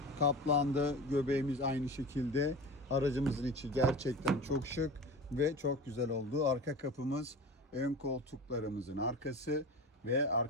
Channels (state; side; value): normal; both; correlation 0.32